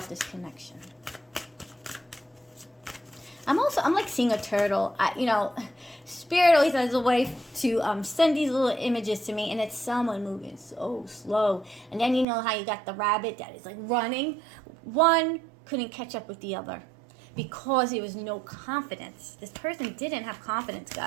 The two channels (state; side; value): drops out; left; at 12.2 s